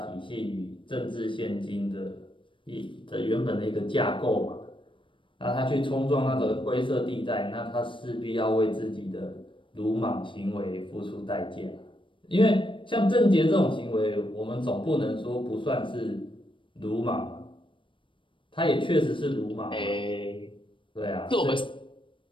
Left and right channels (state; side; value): late; right; 0.25 ms